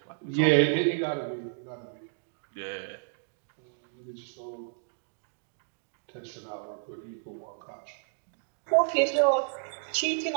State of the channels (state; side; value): silent; left; digital silence